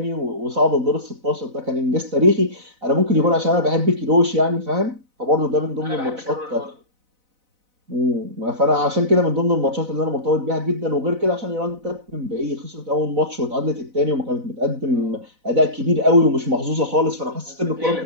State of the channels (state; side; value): late; left; 4.0 ms